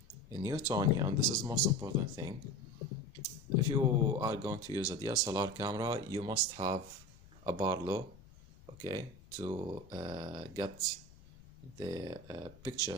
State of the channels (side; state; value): left; noise; rumble, 23 dB below the sound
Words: Newtonian, this is the most important thing. If you are going to use a DSLR camera, you must have a Barlow, okay, to get the